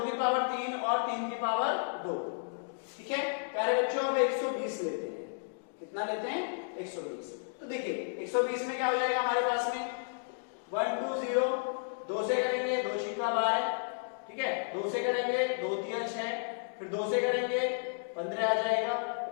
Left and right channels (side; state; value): right; silent; digital silence